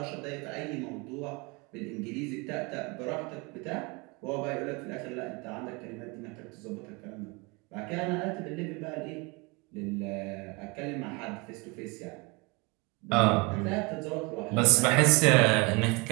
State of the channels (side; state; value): left; quieter; 28.0 dB